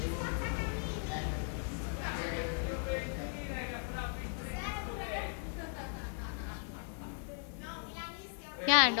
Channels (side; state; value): right; silent; 53 dB below the other